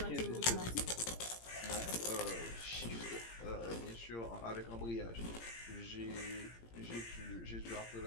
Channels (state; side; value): late; right; 17 ms